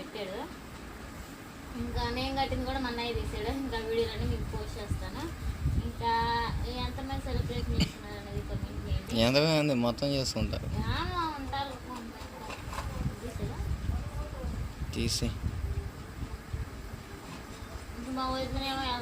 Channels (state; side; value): identical; both; correlation 1.00